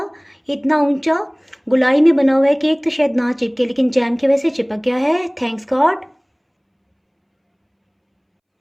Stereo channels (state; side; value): identical; both; correlation 1.00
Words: इतना ऊंचा गुलाई में बना हुआ है केक तो शायद ना चिपके, लेकिन जैम की वजह से चिपक गया है। Thanks God.